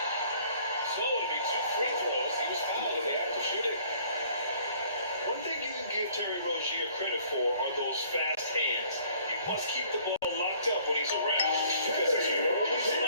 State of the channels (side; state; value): both; inverted; correlation -0.57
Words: So it'll be 2 free throws. He was fouled in the act of shooting. One thing you can give Terry Rozier credit for are those fast hands. You must keep the ball locked up when he's around because he's always